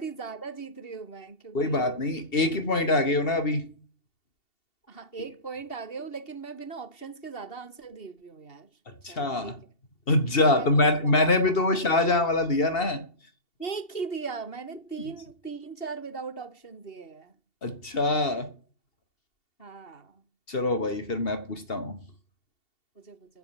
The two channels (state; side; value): late; right; 2.7 ms